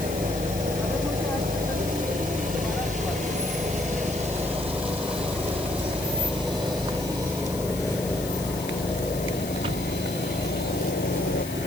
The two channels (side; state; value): left; noise; hiss, 11 dB below the sound